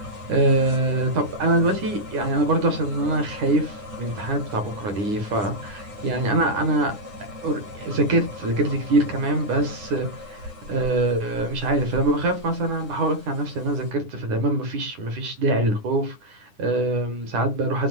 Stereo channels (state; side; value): late; left; 9.8 ms